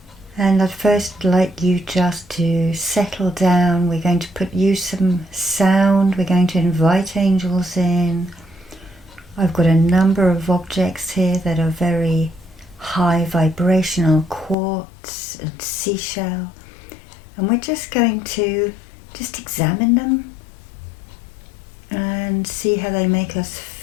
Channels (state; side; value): drops out; right; at 14.6 s